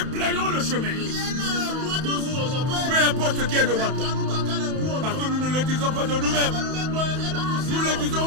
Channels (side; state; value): left; late; 31 ms